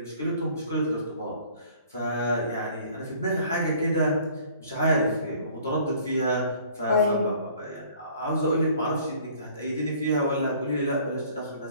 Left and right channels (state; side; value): inverted; both; correlation -0.54